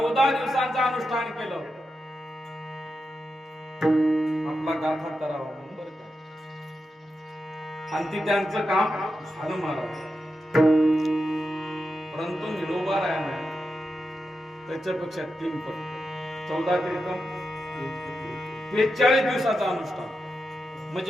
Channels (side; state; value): both; normal; correlation 0.88